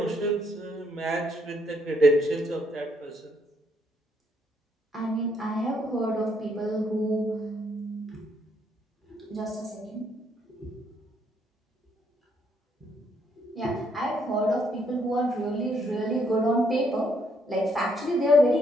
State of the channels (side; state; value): both; normal; correlation 0.72